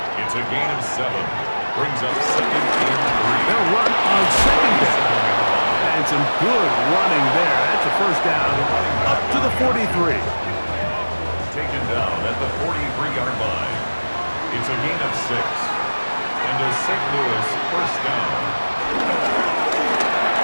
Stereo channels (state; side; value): inverted; both; correlation -1.00